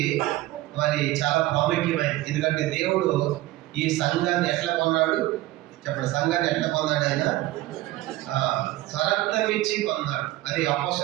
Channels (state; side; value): quieter; left; 17.0 dB